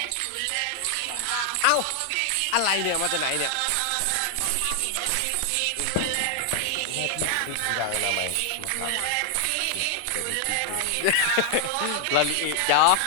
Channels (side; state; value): both; different; correlation 0.00